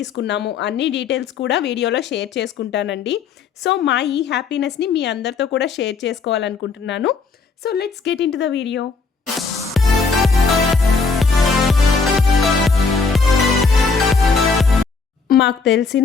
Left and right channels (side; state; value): right; quieter; 4.7 dB